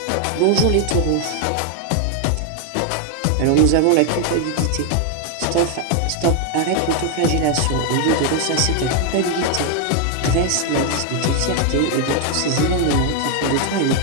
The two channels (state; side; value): different; both; correlation 0.00